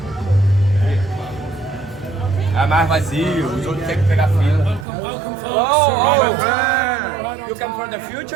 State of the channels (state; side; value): drops out; left; at 4.9 s